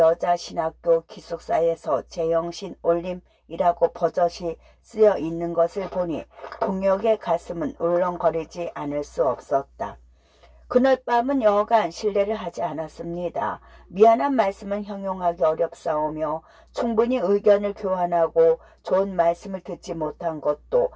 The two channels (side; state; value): both; identical; correlation 1.00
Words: 기숙사에서 제영신 올림이라고 버젓이 쓰여 있는 것을 보니 동혁의 가슴은 울렁거리지 않을 수 없었다. 그날 밤은 여간 실례를 하지 않았습니다. 미안한 말씀은 형용하기 어렵사오며 충분히 의견을 교환하고 좋은 말씀을 듣지 못한 것도